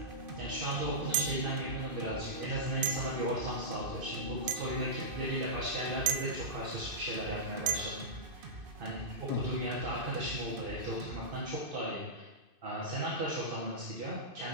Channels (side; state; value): left; late; 2.5 ms